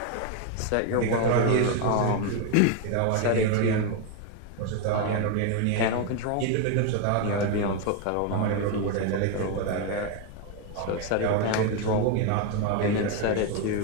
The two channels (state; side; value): different; both; correlation 0.01